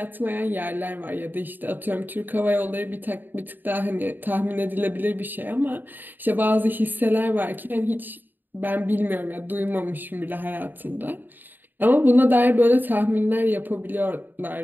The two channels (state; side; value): late; left; 0.091 ms